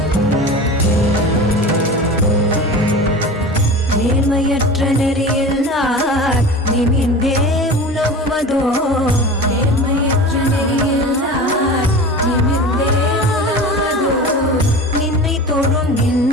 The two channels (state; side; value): normal; both; correlation 0.34